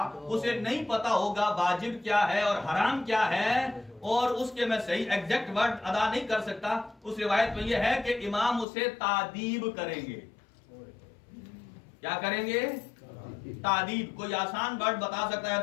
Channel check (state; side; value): drops out; right; at 8.7 s